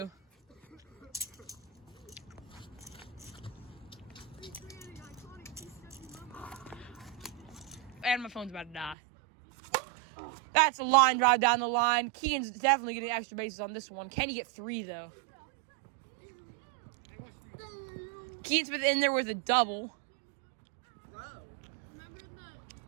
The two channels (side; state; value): left; drops out; at 9.0 s